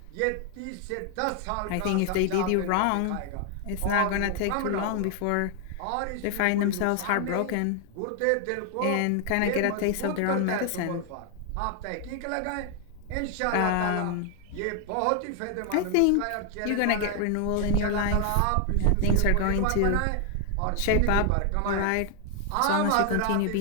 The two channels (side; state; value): both; different; correlation 0.00